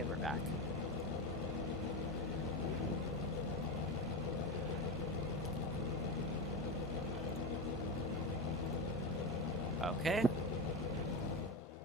we're back. Okay.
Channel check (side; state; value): both; normal; correlation 0.18